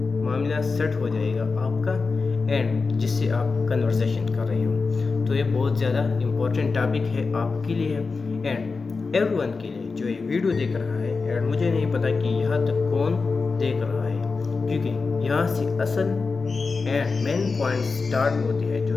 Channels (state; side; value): quieter; right; 4.4 dB